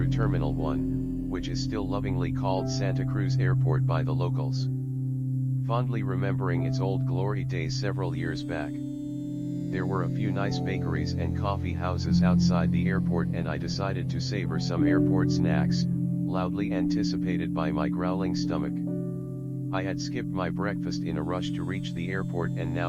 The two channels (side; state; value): both; identical; correlation 1.00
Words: Terminal 1, which is still lovingly called Santa Cruz Airport by the locals. Fondly remembering its old glory days several years back. There were a few nice bakeries and coffee houses outside the airport, and I decided to savor some airport snacks, loudly anticipated by my growling stomach. I had skipped my breakfast in a rush to reach the airport, and